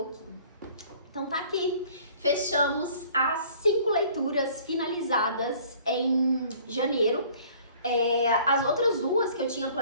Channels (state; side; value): inverted; both; correlation -0.53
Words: Então tá aqui, fechamos as 5 leituras finalizadas em janeiro. As outras 2 que eu tinha